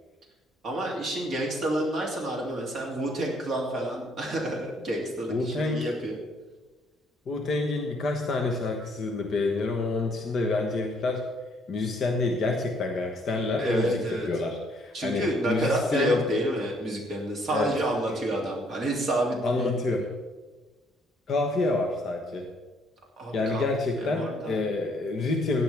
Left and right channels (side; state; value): both; normal; correlation 0.66